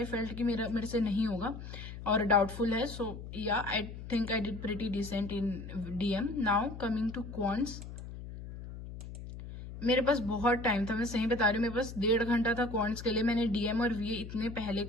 felt कि मेरे से नहीं होगा और डाउटफुल है. So yeah I think I did pretty decent in DM. Now coming to quants, मेरे पास बहुत टाइम था, मैं सही बता रही हूँ. मेरे पास 1.5 घंटा था क्वांट्स के लिए. मैंने DM और VA इतने पहले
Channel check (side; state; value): left; noise; hum, 11 dB below the sound